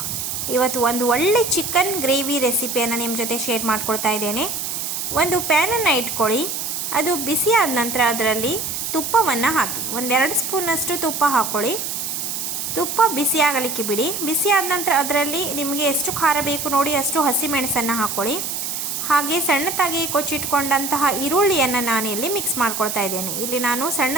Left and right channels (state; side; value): noise; right; hiss, 4 dB below the sound